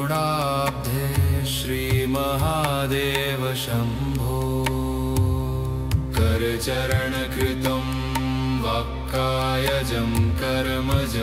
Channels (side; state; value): both; identical; correlation 1.00